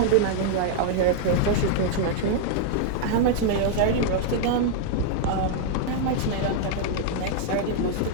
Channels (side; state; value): both; different; correlation -0.01